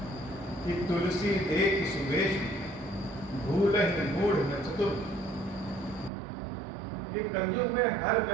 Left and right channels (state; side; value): drops out; left; at 6.1 s